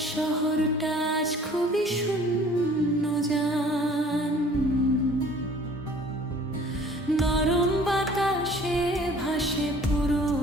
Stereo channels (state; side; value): normal; both; correlation 0.52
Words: শহরটা আজ খুবই শূন্য জান। নরম বাতাসে ভাসে